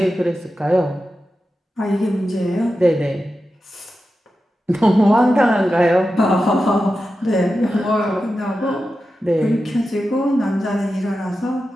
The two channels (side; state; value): both; normal; correlation 0.91